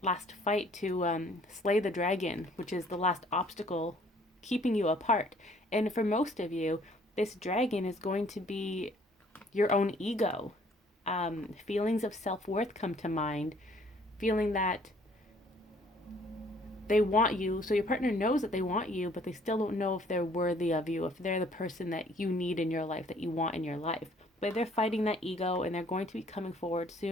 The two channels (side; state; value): both; normal; correlation 0.59